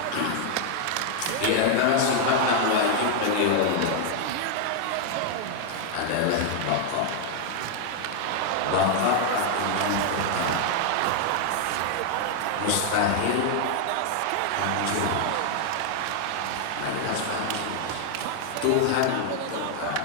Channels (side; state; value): both; different; correlation 0.00